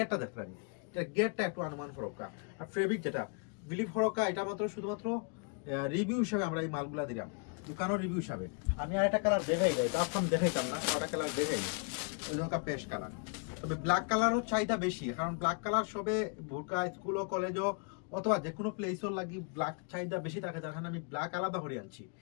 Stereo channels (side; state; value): right; quieter; 39.5 dB